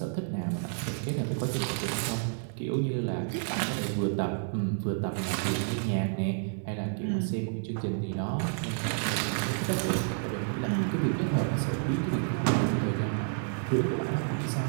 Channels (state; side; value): silent; left; 58 dB below the other